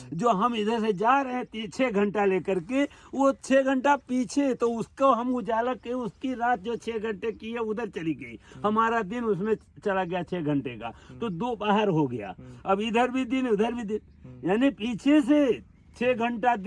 जो हम इधर से जा रहे हैं 6 घंटा लेकर के, वो 6 घंटा पीछे, तो उसको हम उजाला के उसकी रात जो 6 घंटे की है उधर चली गई, हमारा दिन उसमें चला गया 6 घंटे का, तो 2 बाहर हो गया। अब इधर भी दिन उधर भी दिन, यानी पीछे से 6 घंटा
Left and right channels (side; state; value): both; identical; correlation 1.00